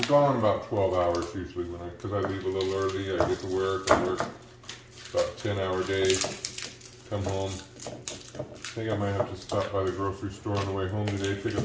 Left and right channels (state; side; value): identical; both; correlation 1.00